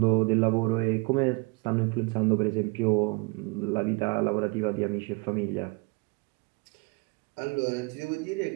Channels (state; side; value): quieter; left; 28.3 dB